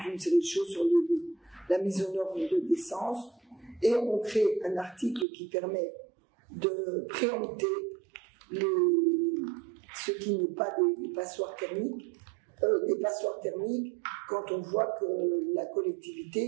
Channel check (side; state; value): left; drops out; at 5.2 s